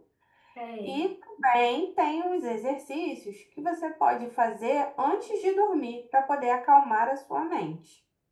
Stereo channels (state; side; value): identical; both; correlation 1.00